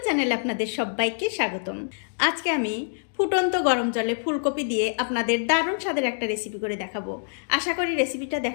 চ্যানেলে আপনাদের সবাইকে স্বাগতম। আজকে আমি ফুটন্ত গরম জলে ফুলকপি দিয়ে আপনাদের দারুণ স্বাদের একটা রেসিপি করে দেখাবো। আশা করি রেসিপিটা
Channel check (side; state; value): right; silent; digital silence